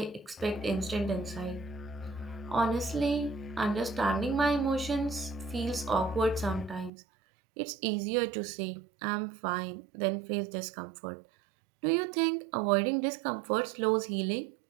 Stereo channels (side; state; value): left; drops out; at 6.9 s